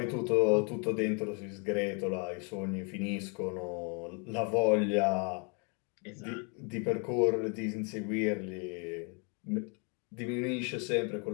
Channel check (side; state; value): right; quieter; 35.7 dB